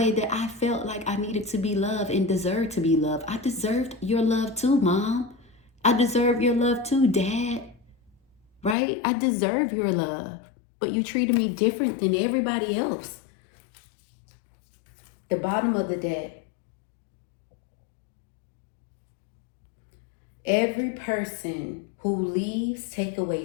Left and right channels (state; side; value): drops out; right; at 8.8 s